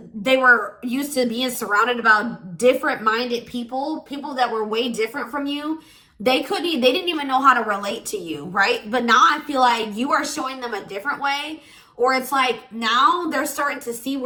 they were used to being surrounded about different minded people that were way different from you. They didn't even know how to relate to you, right? But now I feel like you are showing them a different way, or it's like now they're starting to see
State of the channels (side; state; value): both; identical; correlation 1.00